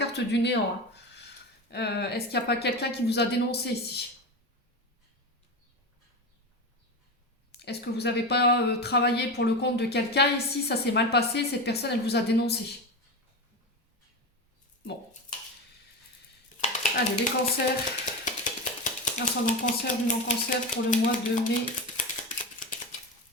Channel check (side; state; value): both; normal; correlation 0.22